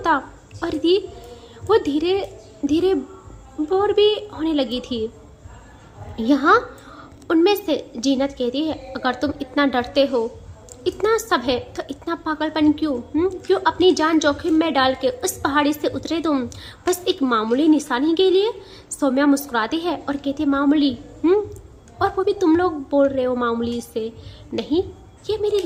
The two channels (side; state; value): both; identical; correlation 1.00